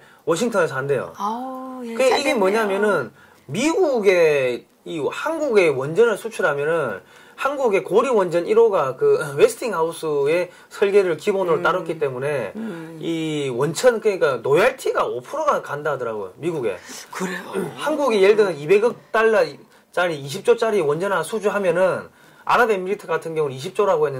워싱턴에서 한대요. 이게 뭐냐면은 미국의 한국의 원전을 수출하면은 한국의 고리 원전 1호가 그 웨스팅하우스의 설계를 기본으로 따랐기 때문에 이 원천 그러니까 로얄티가 5%가 간다 하더라고요. 미국에. 그래요. 한국이 예를 들면 200억 달러짜리 20조짜리 원전 하나 수주하면은 아랍에미리트 같은 경우는 20조라고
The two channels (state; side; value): identical; both; correlation 1.00